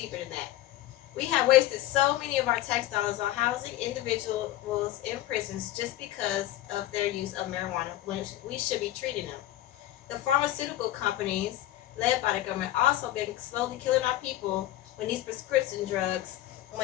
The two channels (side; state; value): right; quieter; 14.7 dB